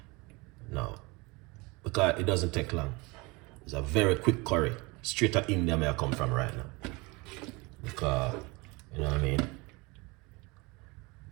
Now, because it doesn't take long. It's a very quick curry. Straight out India where I come from right now. Because, you know what I mean?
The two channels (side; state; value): left; quieter; 25.8 dB